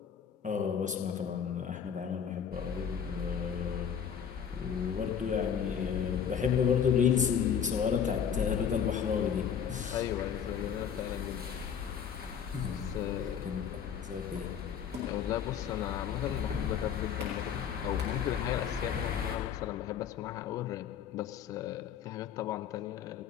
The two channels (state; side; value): quieter; right; 7.8 dB